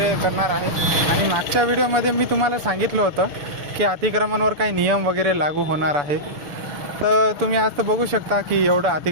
करणार आहे. आणि मागच्या व्हिडिओमध्ये मी तुम्हाला सांगितलं होतं की अतिक्रमणवर काही नियम वगैरे लागू होणार आहे. तर तुम्ही आज तर बघू शकता की एवढं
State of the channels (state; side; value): late; left; 6.9 ms